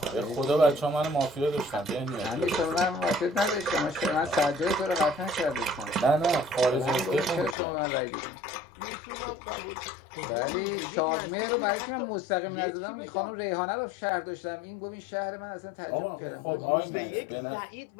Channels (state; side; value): drops out; right; at 7.6 s